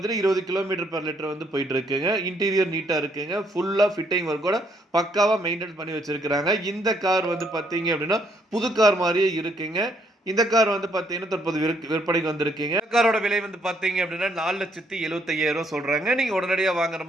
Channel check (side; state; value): both; normal; correlation 0.70